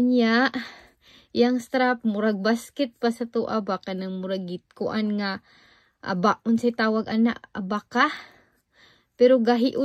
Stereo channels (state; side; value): identical; both; correlation 1.00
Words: yang strap murag basket pa sa tuwa ba kanang murag kuan nga aba unsay tawag ana abaka. Pero